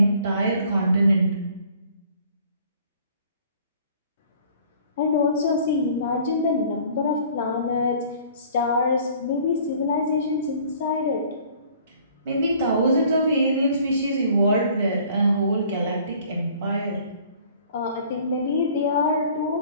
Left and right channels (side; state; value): both; inverted; correlation -0.54